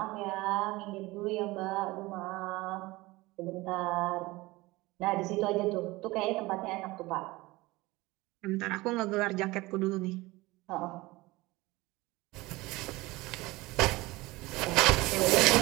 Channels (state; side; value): quieter; left; 20.9 dB